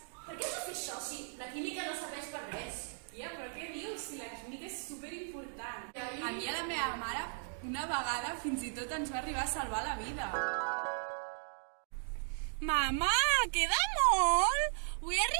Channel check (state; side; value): silent; left; digital silence